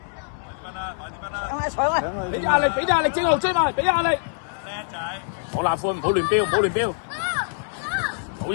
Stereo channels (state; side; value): silent; right; 62 dB below the other